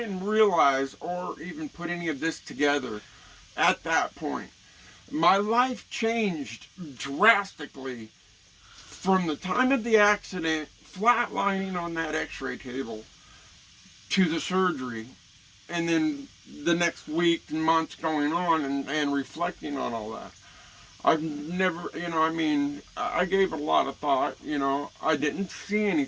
realize or even put any of this together at that point. My life changed drastically from the time of the accident, flatlining on that x-ray table, to the surgery, and then the next week and months going on and reflecting on all that. I've never, I gave it a lot of thought, I didn't see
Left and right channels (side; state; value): both; identical; correlation 1.00